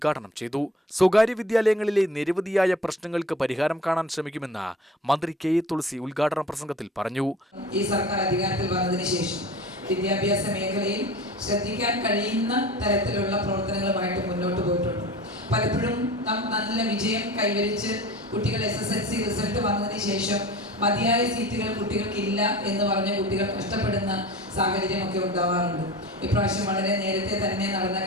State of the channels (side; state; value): both; normal; correlation 0.39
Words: ചെയ്തു. സ്വകാര്യ വിദ്യാലയങ്ങളിലെ നിരവധിയായ പ്രശ്നങ്ങൾക്ക് പരിഹാരം കാണാൻ ശ്രമിക്കുമെന്ന് മന്ത്രി കെ എ തുളസി ഉദ്ഘാടന പ്രസംഗത്തിൽ പറഞ്ഞു. ഈ സർക്കാർ അധികാരത്തിൽ വന്നതിന് ശേഷം വിദ്യാഭ്യാസ മേഖലയിൽ ശ്രദ്ധിക്കാൻ കഴിയുന്ന തരത്തിലുള്ള പ്രവർത്തനങ്ങളുമായിട്ട് മുന്നോട്ട് പോയിട്ടുണ്ട്. പലപ്പോഴും നല്ല വിജയം കൈവരിച്ച് കുട്ടികൾ SSLC റിസൾട്ട് വന്നതിന് ശേഷം മതിയായ സീറ്റുകൾ കുട്ടികൾക്കില്ല എന്ന് പറഞ്ഞ് കുട്ടികൾ കഷ്ടപ്പെടുന്ന സാഹചര്യമൊക്കെ ഉണ്ടാവാറുണ്ട്. ഇപ്രാവശ്യം വളരെ നേരത്തെ തന്നെ നടന്ന